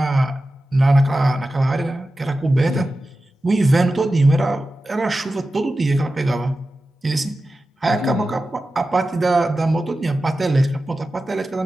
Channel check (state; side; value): normal; both; correlation 0.94